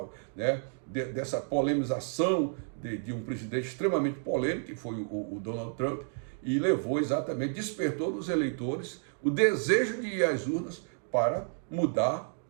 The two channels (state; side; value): silent; left; 57 dB below the other